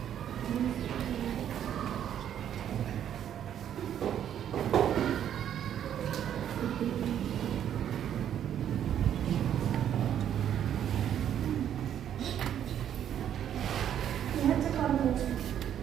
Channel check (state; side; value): quieter; left; 10.0 dB